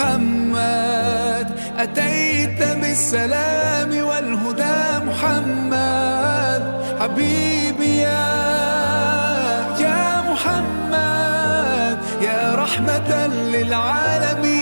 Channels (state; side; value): inverted; both; correlation -1.00